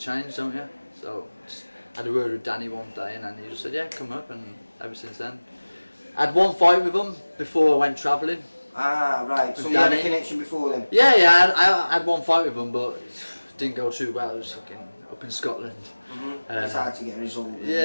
don't you? So just had a word with Danny one day, and then he just said, yeah, come up, and ever since then. I had 1 fight with him before I went travelling. Ah, right. So you had a connection before then? Yeah, I had 1 fight with him, but it didn't go too well. It was fucking up in Scotland. It's hard to get a result.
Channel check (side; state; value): both; inverted; correlation -1.00